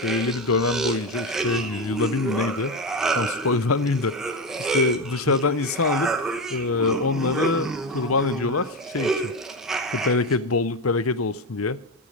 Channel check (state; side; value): normal; both; correlation 0.15